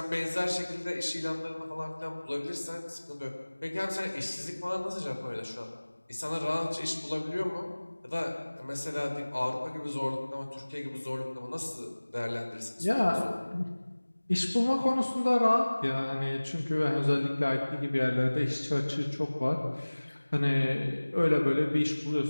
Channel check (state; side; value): inverted; both; correlation -1.00